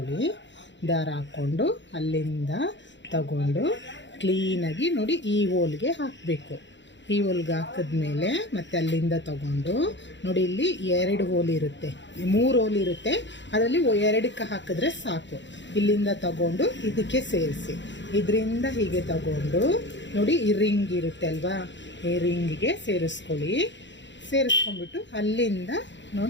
ದಾರ ಹಾಕ್ಕೊಂಡು ಅಲ್ಲಿಂದ ತಗೊಂಡು ಕ್ಲೀನಾಗಿ ನೋಡಿ ಈ ಹೋಲ್ಗೆ ಹಾಕಬೇಕು. ಈ ಹೋಲ್ಗೆ ಹಾಕಿದ್ಮೇಲೆ ಮತ್ತೆ ಅಲ್ಲಿಂದ ತಗೊಂಡು ನೋಡಿ, ಇಲ್ಲಿ 2 ಹೋಲ್ ಇರುತ್ತೆ, 3 ಹೋಲ್ ಇರುತ್ತೆ, ಅದರಲ್ಲಿ 2ಕ್ಕೆ ಹಾಕಿದ್ರೆ ಸಾಕು. ಇಲ್ಲಿಂದ ತಗೊಂಡು ಇದಕ್ಕೆ ಸೇರಿಸಿ, ಇದರಿಂದ ಹೀಗೆ ತಗೊಂಡು ನೋಡಿ ಈ ರಿಂಗ್ ಇರುತ್ತೆ ಅಲ್ವಾ, ಈ ರಿಂಗಿಗೆ ಸೇರಿಸ್ಕೊಳ್ಳಿ. ಸೇರಿಸ್ಕೊಂಡ್ಬಿಟ್ಟು ಅಲ್ಲಿಂದ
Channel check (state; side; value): late; right; 0.53 ms